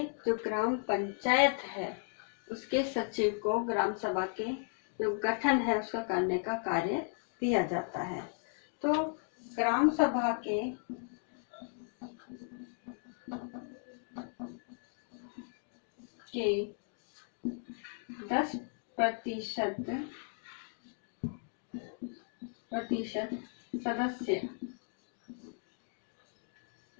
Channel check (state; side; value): silent; right; 54 dB below the other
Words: जो ग्राम पंचायत है उसके सचिव को ग्राम सभा के जो गठन है उसका करने का कार्य दिया जाता है। तो ग्राम सभा के के 10%